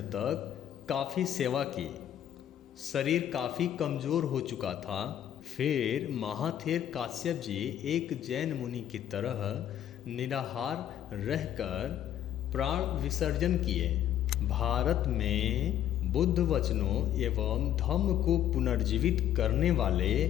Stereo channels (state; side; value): quieter; right; 10.9 dB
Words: तक काफ़ी सेवा की। शरीर काफ़ी कमज़ोर हो चुका था। फिर महाथेर काश्यप जी एक जैन मुनि की तरह निराहार रहकर प्राण विसर्जन किए। भारत में बुद्ध वचनों एवं धम्म को पुनर्जीवित करने वाले